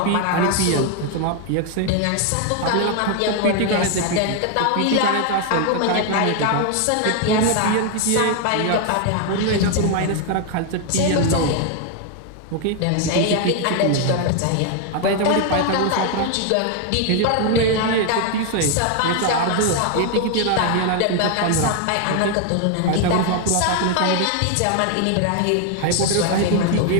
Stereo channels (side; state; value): both; different; correlation 0.01